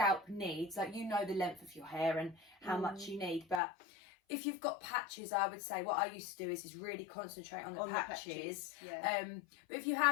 needs. Like, you know the length of your hair and how much you need. But if you've got patches, I would say what I used to do is really concentrate on the patches. Yeah. But if you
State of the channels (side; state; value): right; drops out; at 3.6 s